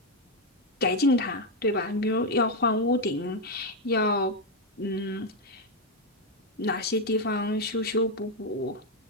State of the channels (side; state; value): both; normal; correlation 0.04